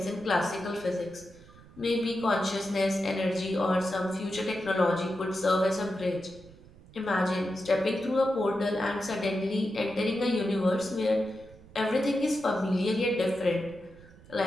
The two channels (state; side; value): noise; right; rumble, 22 dB below the sound